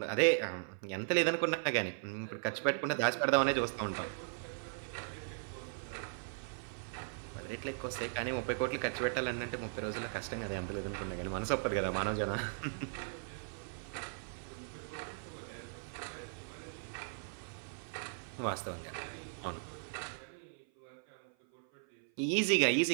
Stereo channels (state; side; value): silent; left; 53 dB below the other